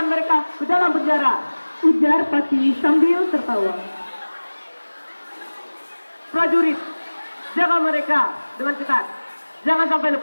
mereka ke dalam penjara. Ujar Patih sambil tertawa. Prajurit, jaga mereka dengan ketat. Jangan sampai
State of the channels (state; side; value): inverted; both; correlation -1.00